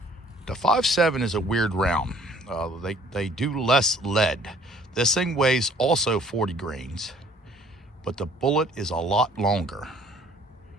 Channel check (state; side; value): normal; both; correlation 0.56